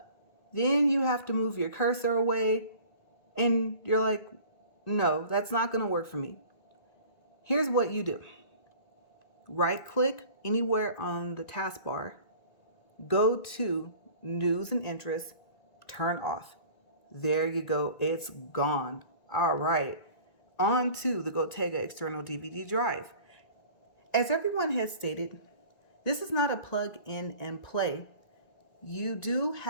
Then you have to move your cursor away and you're like, no, that's not going to work for me. Here's what you do. Right click anywhere on the taskbar, go to News and Interests, turn off. There you go, it's gone. All right, on to the Gotega external DVD drive. As everyone has stated, this is not a plug in and play. You do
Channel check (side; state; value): right; late; 1.9 ms